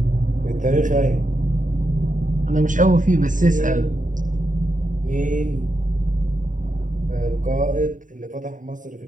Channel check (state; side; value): late; left; 0.38 ms